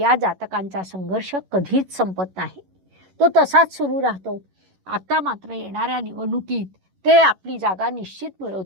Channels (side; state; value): left; late; 11 ms